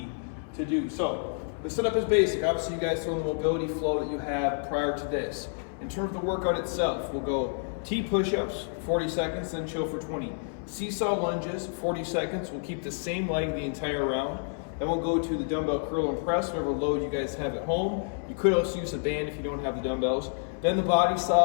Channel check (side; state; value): right; silent; 58 dB below the other